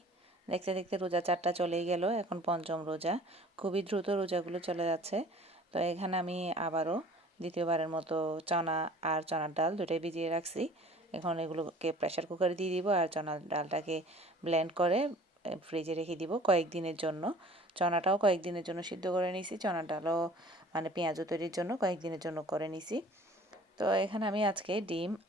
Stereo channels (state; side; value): normal; both; correlation 0.49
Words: দেখতে দেখতে রোজা 4টা চলেই গেল। এখন পঞ্চম রোজা। খুবই দ্রুত রোজাগুলো চলে যাচ্ছে। তো এখানে আমি আবারও দ্বিতীয়বারের মতো চনা আর চনার ডাল দুটোই ভিজিয়ে রাখছি। এখন এগুলোকে প্রেসার কুকারে দিয়ে দিব আর চনার ডালটাকে ব্লেন্ড করে ফ্রিজে রেখে দিব কয়েকদিনের জন্য। চনাটাও কয়েকদিনের জন্য সিদ্ধ করে নিছি, চনার ডালও মানে পেঁয়াজু তৈরির জন্য কয়েকদিনের জন্য করে নিছি। তো এখানে আমি আজকে ডিম